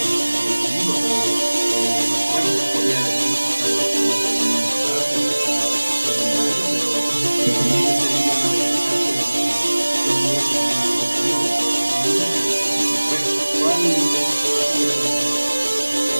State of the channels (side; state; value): both; inverted; correlation -1.00